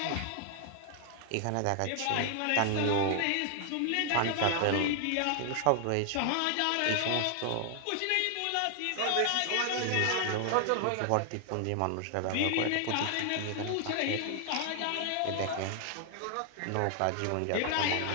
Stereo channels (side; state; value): both; different; correlation 0.00